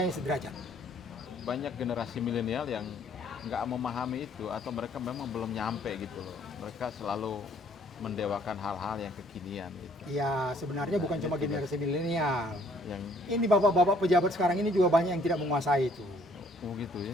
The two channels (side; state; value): both; normal; correlation 0.62